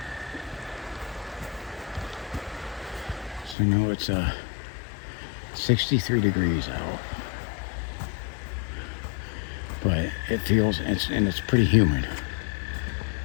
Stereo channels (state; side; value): drops out; right; at 3.6 s